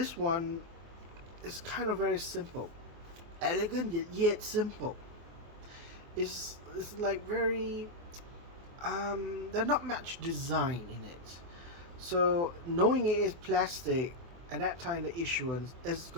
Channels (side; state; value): left; late; 24 ms